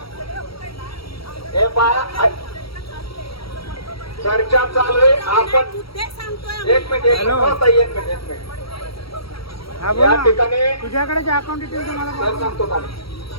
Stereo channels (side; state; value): right; late; 0.75 ms